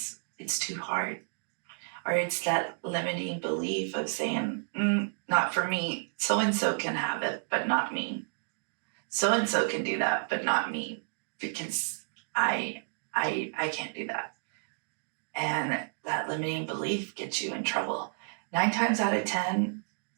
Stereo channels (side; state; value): left; silent; digital silence